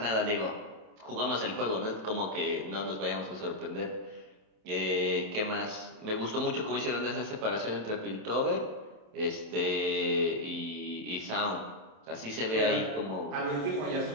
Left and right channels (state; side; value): late; left; 27 ms